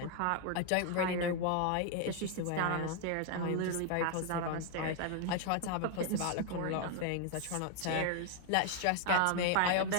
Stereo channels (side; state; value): both; different; correlation 0.00